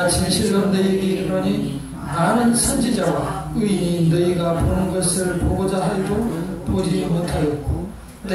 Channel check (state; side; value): identical; both; correlation 1.00